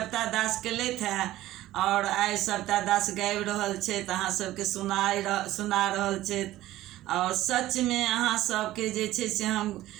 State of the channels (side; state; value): left; quieter; 15.3 dB